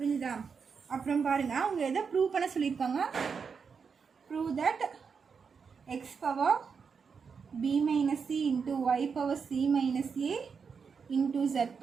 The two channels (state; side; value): quieter; left; 5.9 dB